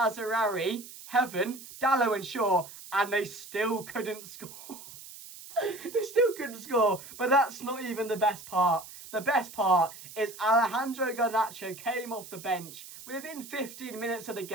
Heaven, Dalot and Shaw, and they still couldn't score. They still couldn't score, but that's not even the best part. The best part is Alejandro Garnacho came off the bench within 15 minutes of the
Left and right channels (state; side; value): noise; right; hiss, 15 dB below the sound